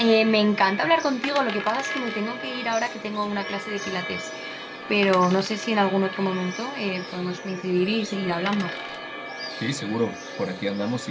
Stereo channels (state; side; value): identical; both; correlation 1.00